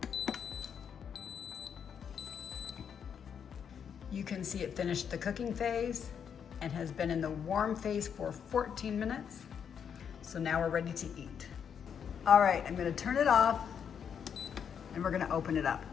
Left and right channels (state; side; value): quieter; right; 7.6 dB